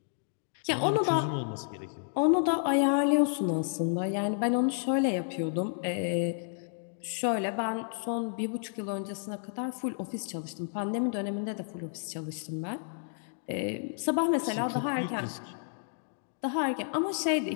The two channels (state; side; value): silent; right; digital silence